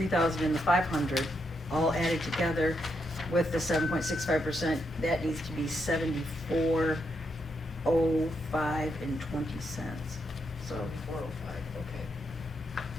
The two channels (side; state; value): both; normal; correlation 0.80